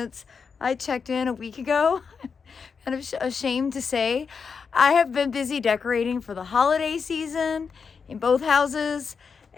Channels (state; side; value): quieter; right; 5.7 dB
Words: I checked in a week ago. Kind of ashamed to say. I have been busy decorating for the holiday season in both houses,